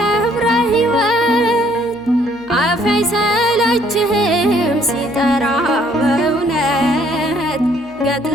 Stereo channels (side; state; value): left; noise; hum, 27 dB below the sound